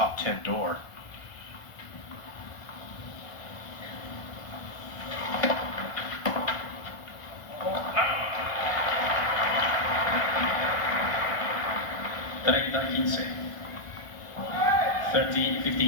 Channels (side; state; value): right; late; 1.4 ms